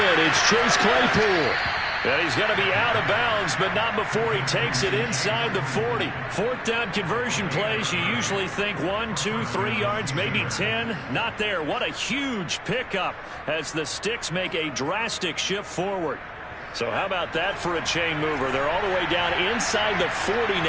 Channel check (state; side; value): identical; both; correlation 1.00